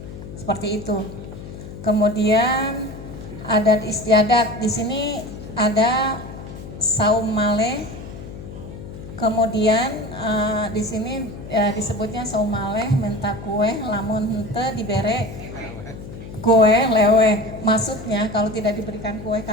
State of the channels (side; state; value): left; noise; hum, 12 dB below the sound